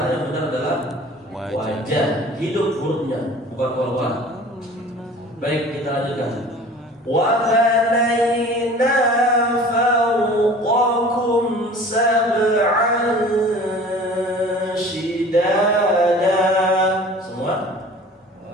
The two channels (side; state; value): both; normal; correlation 0.44